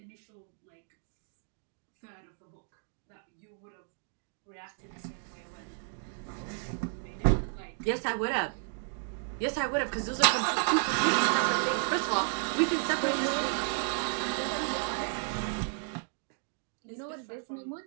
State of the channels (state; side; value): silent; left; 56 dB below the other